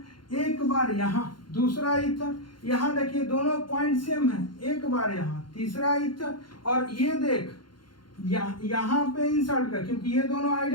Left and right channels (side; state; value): right; late; 0.72 ms